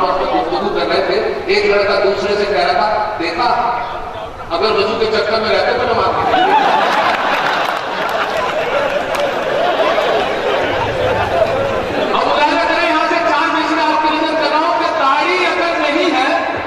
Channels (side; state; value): both; identical; correlation 1.00